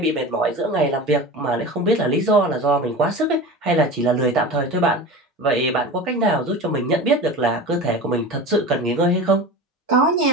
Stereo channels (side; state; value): both; normal; correlation 0.31